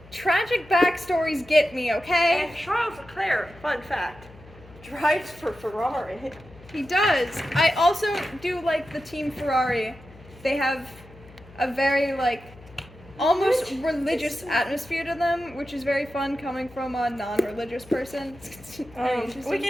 tragic backstories get me, okay? And Charles Leclerc, fun fact, drives for Ferrari. He does. I also do like the Team Ferrari. They have a very almost religious atmosphere to them, which is very fun coming from a non-religious person. We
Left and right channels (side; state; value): left; noise; hum, 22 dB below the sound